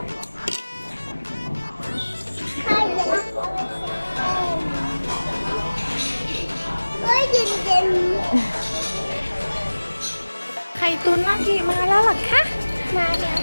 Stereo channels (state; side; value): inverted; both; correlation -1.00